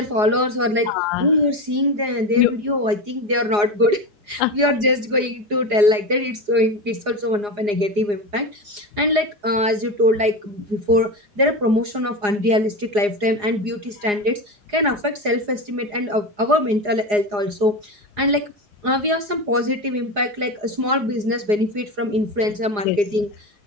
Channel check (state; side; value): late; left; 4.9 ms